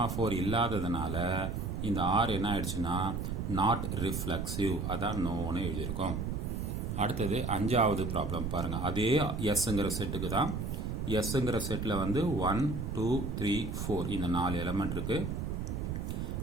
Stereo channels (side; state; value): right; noise; rumble, 3 dB below the sound